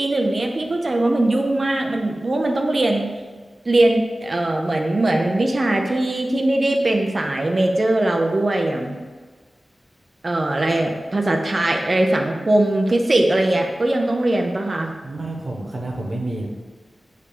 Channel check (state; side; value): normal; both; correlation 0.97